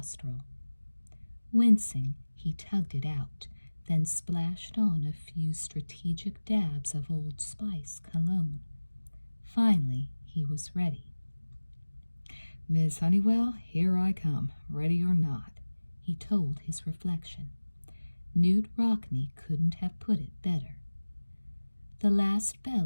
Wincing, he tugged it out, then splashed on a few strategic dabs of Old Spice cologne. Finally, he was ready. "Miss Honeywell, here I come, ready or not," he told his reflection. Newt Rockney couldn't have put it better. The last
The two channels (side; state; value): both; inverted; correlation -1.00